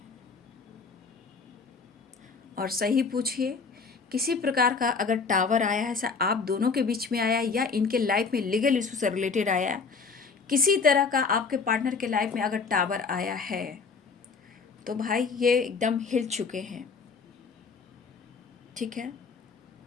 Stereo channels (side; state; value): right; quieter; 5.0 dB